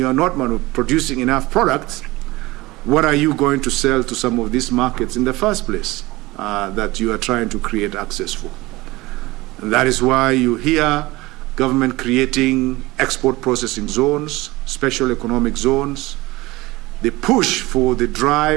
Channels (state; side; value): quieter; left; 20.4 dB